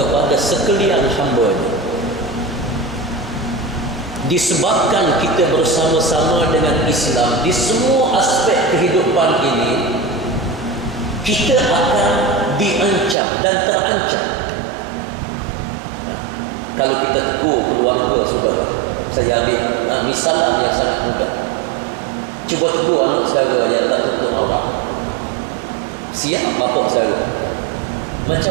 sekalian hamba-Nya. Disebabkan kita bersama-sama dengan Islam di semua aspek kehidupan ini, kita akan diancam dan terancam. Kalau kita tegur keluarga saudara, saya ambil misalan yang sangat mudah. Cuba tegur anak saudara yang tak tuntut awak. Siap bapak saudara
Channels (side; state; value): left; drops out; at 13.2 s